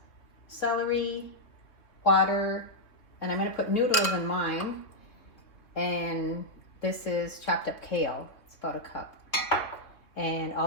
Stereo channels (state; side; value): late; right; 3.0 ms